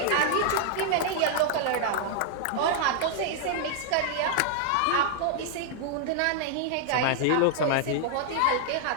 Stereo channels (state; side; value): different; both; correlation 0.00